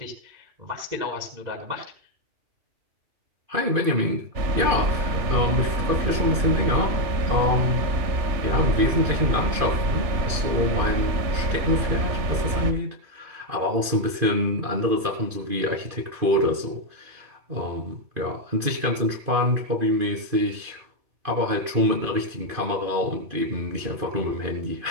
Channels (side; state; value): left; late; 2.5 ms